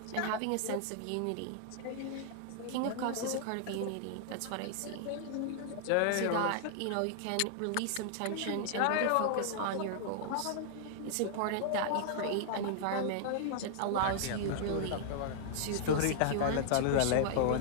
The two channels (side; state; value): both; different; correlation -0.01